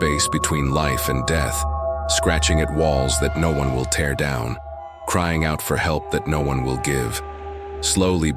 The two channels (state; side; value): identical; both; correlation 1.00